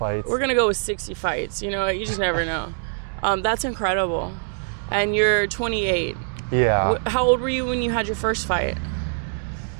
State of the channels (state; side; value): silent; left; digital silence